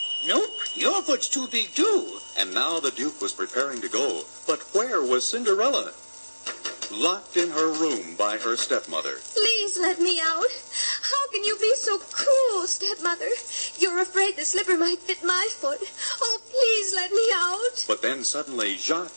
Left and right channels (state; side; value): inverted; both; correlation -1.00